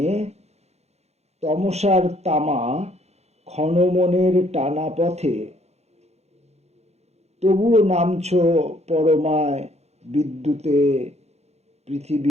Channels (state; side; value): late; left; 0.31 ms